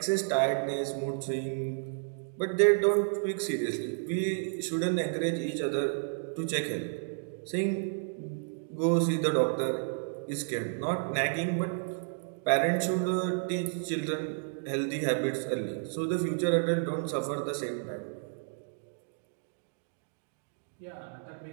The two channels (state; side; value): silent; left; digital silence